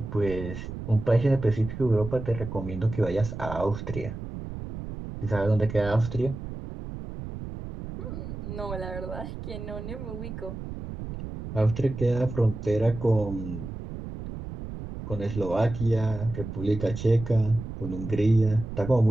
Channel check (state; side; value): noise; right; rumble, 9 dB below the sound